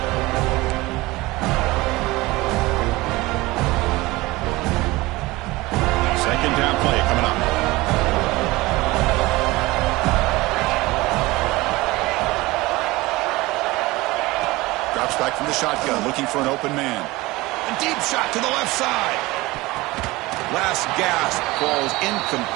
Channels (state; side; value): quieter; left; 20.7 dB